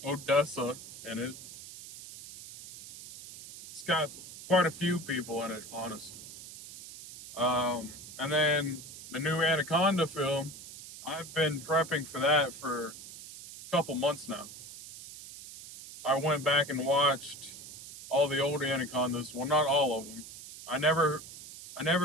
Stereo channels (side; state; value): right; noise; hiss, 14 dB below the sound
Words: Odessa in it. It's got quite a few people in it, honestly. And then the new Anaconda film, I've been prepping for that for a couple months now. I went back and watched all the old Anacondas. Well, not all of them. I